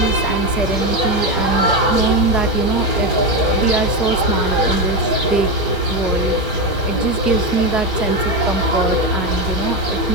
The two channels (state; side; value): normal; both; correlation 0.13